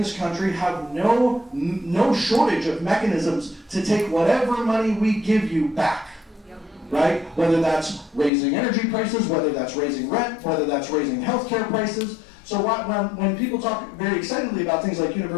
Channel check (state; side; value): drops out; right; at 8.3 s